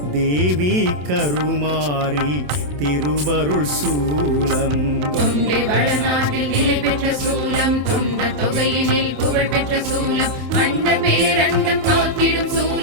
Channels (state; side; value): late; left; 27 ms